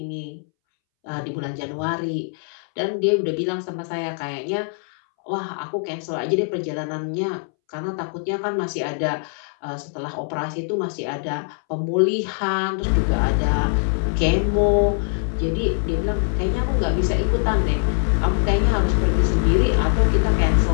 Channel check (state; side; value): silent; right; 64 dB below the other